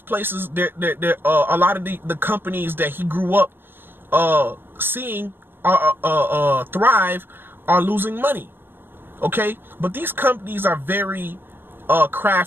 a lot of the companies that he grew up seeing thrive are losing money. Okay, but these companies are very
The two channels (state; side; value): late; left; 0.10 ms